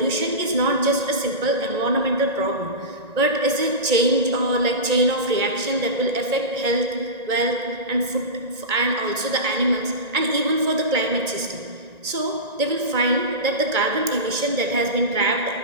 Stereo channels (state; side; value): late; left; 1.9 ms